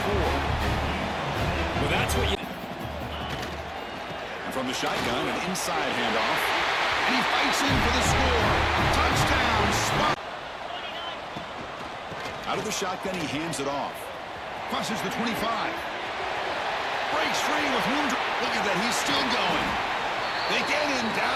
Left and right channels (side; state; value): both; identical; correlation 1.00